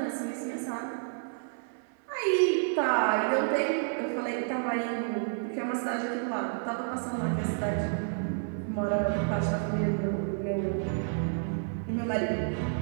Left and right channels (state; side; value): silent; left; 57 dB below the other